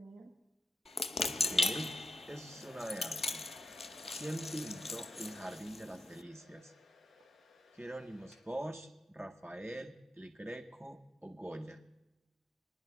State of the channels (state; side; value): normal; both; correlation 0.87